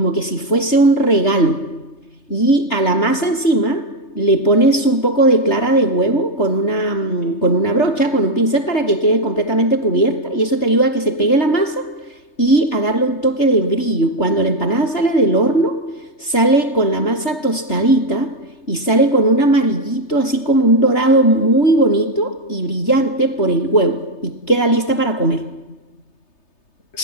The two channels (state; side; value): late; right; 3.3 ms